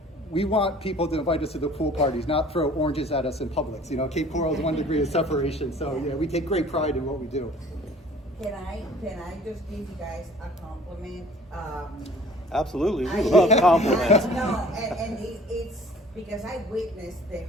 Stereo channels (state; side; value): normal; both; correlation 0.51